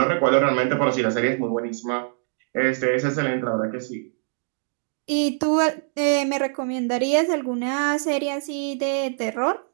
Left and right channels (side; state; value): left; silent; digital silence